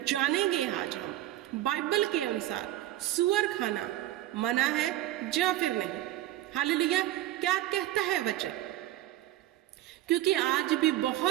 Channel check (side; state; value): left; quieter; 14.3 dB